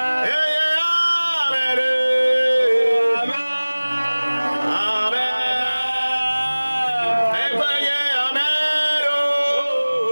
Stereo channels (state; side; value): inverted; both; correlation -1.00